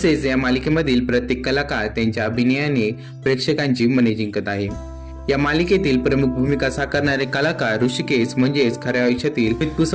या मालिकेमधील प्रत्येक कलाकार त्यांच्या अभिनयाने प्रेक्षकांची मने जिंकत आहे. या मालिकेतील प्रमुख भूमिका साकारणारे कलाकार ऋषिकेश म्हणजेच खऱ्या आयुष्यातील अमित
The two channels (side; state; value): both; identical; correlation 1.00